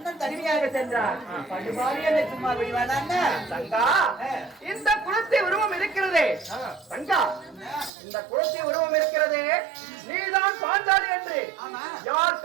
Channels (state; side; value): drops out; left; at 7.9 s